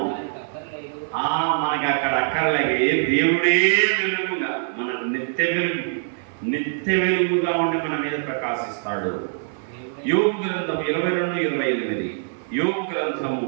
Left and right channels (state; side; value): silent; left; 63 dB below the other